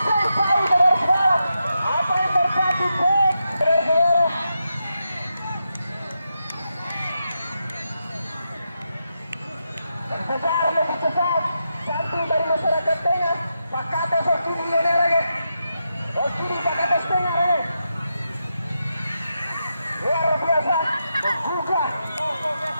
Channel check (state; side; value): inverted; both; correlation -0.86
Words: besar lebih cepat jantung dari masyarakat tengah Pakate Sokiri Lenere Sokiri Pakate Tengah luar biasa membuka